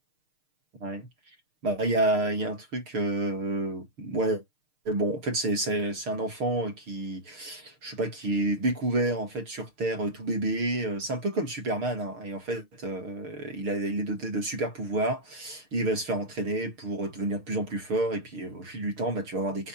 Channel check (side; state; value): left; late; 6.6 ms